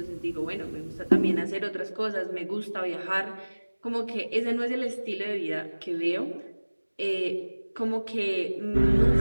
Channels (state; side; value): inverted; both; correlation -1.00